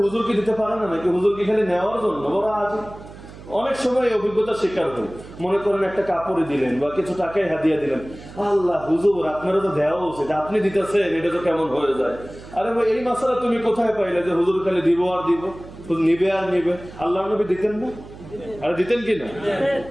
হুজুর কি দিতে পারে না নাকি? হুজুর কি খালি নেওয়ার জন্য? বড় আজ অনেক সময় অভিজ্ঞতার শিকার হই, মনে করেন একটা কাপড়ে দিলেন বা কিছু টাকায় হাদিয়া দিলেন, আল্লাহ হুজুর আপনারা তো দেওয়া উচিত, আপনি দিতেছেন, এটা তো কেমন হয়ে যায়। আরে ভাই, এই মাসালা তুমি কোথায় পাইলে যে হুজুর খালি দিব আর দিব, নিবে আর নিবে? আল্লাহ নবী দিতেন না? আরে দিতেন কি না?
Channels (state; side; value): noise; right; hum, 17 dB below the sound